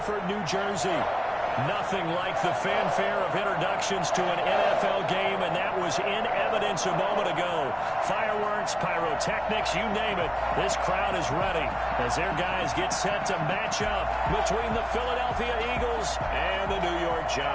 New Jersey. Nothing like the fanfare of introductions to an NFL game, and that was in evidence a moment ago. Fireworks, pyrotechnics, you name it. This crowd is ready as their guys get set to match up between the Philadelphia Eagles and the New York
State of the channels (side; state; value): both; identical; correlation 1.00